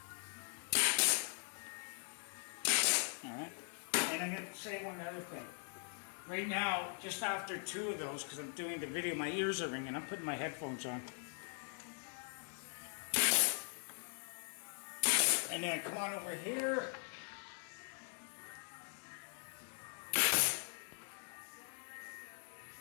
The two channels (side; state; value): right; silent; 50 dB below the other